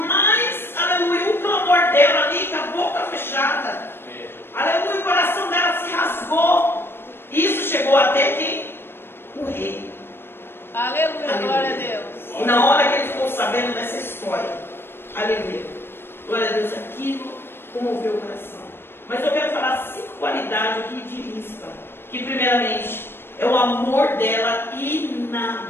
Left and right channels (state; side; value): late; right; 0.11 ms